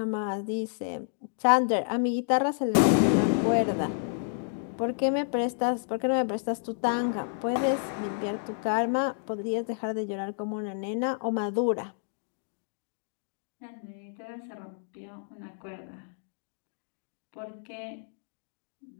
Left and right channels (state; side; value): silent; right; digital silence